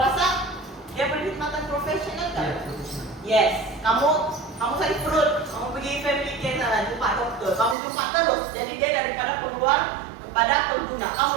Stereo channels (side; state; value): left; drops out; at 7.8 s